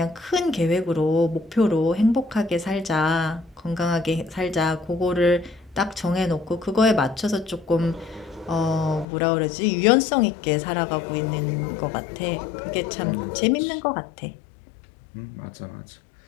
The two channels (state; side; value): drops out; right; at 9.1 s